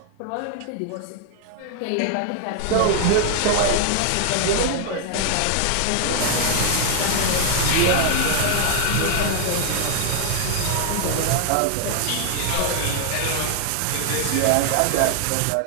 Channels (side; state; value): both; different; correlation 0.00